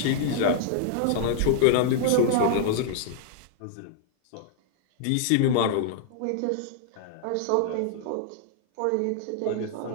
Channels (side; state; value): both; different; correlation -0.01